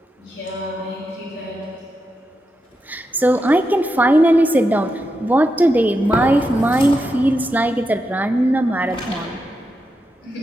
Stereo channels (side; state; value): both; normal; correlation 0.86